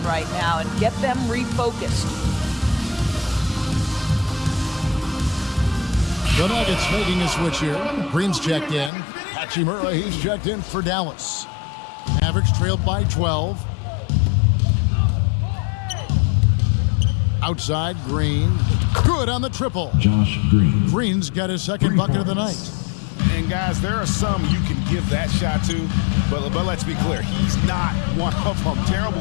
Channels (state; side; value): drops out; right; at 8.9 s